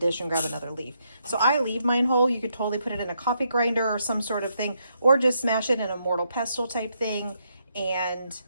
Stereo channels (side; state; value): both; inverted; correlation -0.77